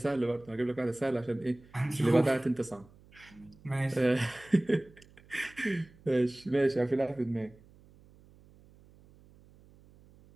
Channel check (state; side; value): noise; right; hum, 26 dB below the sound